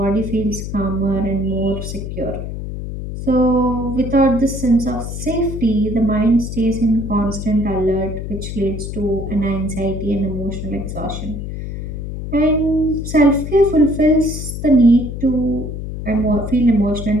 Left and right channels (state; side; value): noise; left; hum, 7 dB below the sound